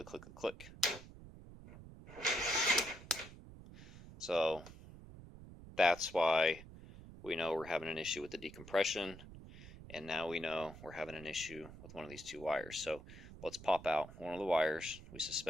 click, click, click. So that's why we know we're having an issue with the decompression. And now we know we're having an issue with one of these two wires. So let's pop out one of the wires. We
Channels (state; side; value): noise; right; rumble, 16 dB below the sound